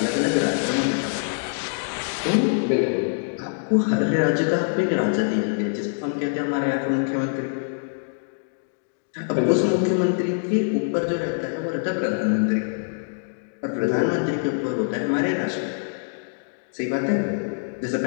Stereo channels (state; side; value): silent; right; digital silence